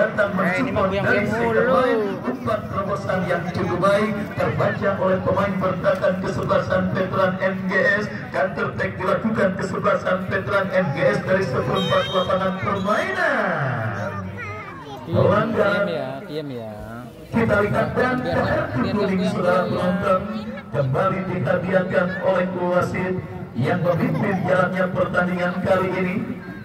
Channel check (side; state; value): both; identical; correlation 1.00